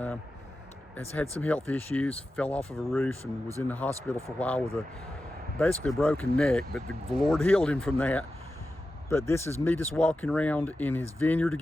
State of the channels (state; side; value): normal; both; correlation 0.92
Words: has had some health issues, fell off of a roof and was in the hospital for a while with basically a broken neck, but the Lord healed him from that. But this is me just walking around in his vineyard